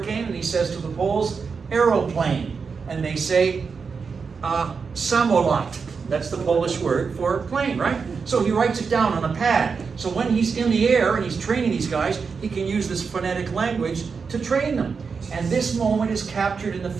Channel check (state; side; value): quieter; left; 5.4 dB